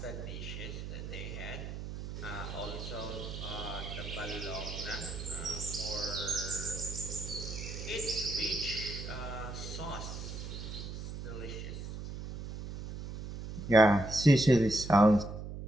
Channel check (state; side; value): noise; right; hum, 8 dB below the sound